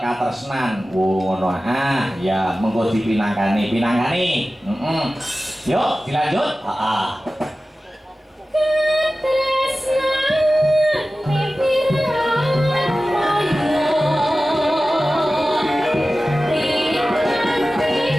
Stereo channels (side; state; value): both; normal; correlation 0.96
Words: Ngono. Ya mengko dipinangkani. Yuk dilanjut. Heeh.